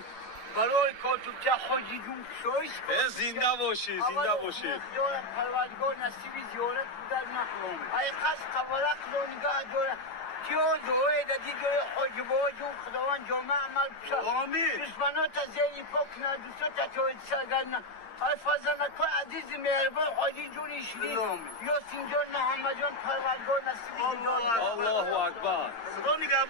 برای کاتوبچه خودی جون شوش کن زنده باشی زنده باشی دور پروردگار نصیبی زیارت بودن نخلوم ای قصد قبلا قلونگاه دور کیو دوه دادی جای حجبا جون خداوند جمعه عمل بشه آمین دشمنات زیلی پاک نه دوستات توید سرگرن ای فضلکو عزیز مهربان حاجی جون ایشلی یا سینجان محمد جان پروردگار نصیبی زیارت الله اکبر صدا میگه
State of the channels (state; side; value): late; right; 8.8 ms